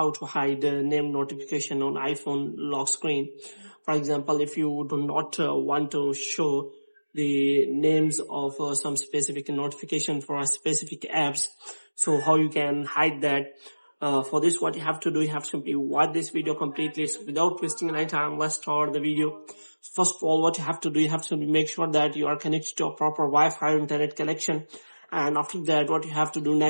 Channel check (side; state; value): both; inverted; correlation -1.00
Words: to hide name notification on iPhone lock screen. For example, if you do not want to show the names of some specific notification for a specific apps, so how you can hide that. For this, what you have to do, you have to simply watch this video completely. So without wasting any time, let's start the video. First of all, what you have to do, you have to make sure that you are connected to a proper Wi-Fi or internet connection. And after that, what you have to do